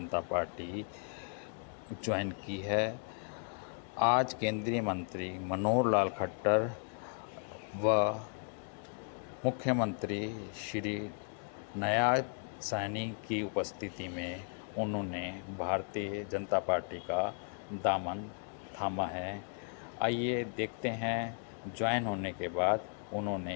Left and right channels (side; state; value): right; silent; 54 dB below the other